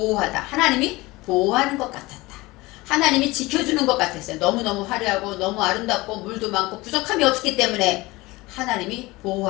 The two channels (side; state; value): right; quieter; 21.2 dB